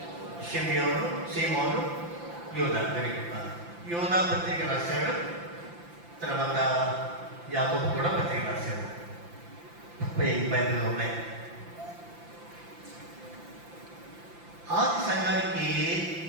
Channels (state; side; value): late; left; 5.8 ms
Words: షిమ్యోను, సీమోను, యూదా. యూదా పత్రిక రాశాడు. తర్వాత యాకోబు కూడా పత్రిక రాశాడు. బైబిల్లో ఉన్నాయి. ఆది సంఘానికి